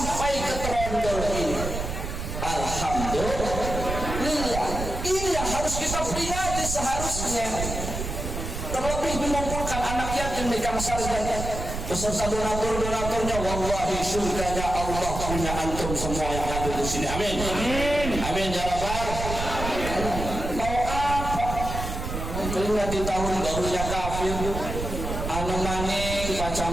ke Trondol ini. Alhamdulillah. Ini yang harus kita peringati seharusnya. Terlebih mengumpulkan anak yatim di Kamsar dan beserta donatur-donaturnya. Wallahi surganya Allah punya antum semua yang hadir di sini. Amin. Amin ya rabbal. Mau apa? Keringat di tahun barunya kafir, anu maning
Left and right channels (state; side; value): noise; right; rumble, 5 dB below the sound